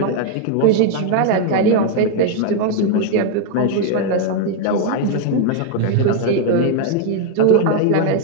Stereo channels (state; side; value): different; both; correlation 0.01